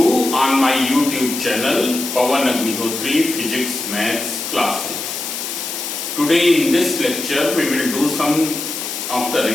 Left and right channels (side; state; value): left; noise; hiss, 5 dB below the sound